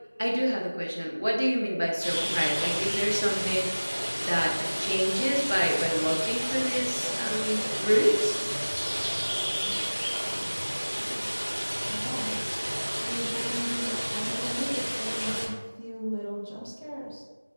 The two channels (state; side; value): inverted; both; correlation -1.00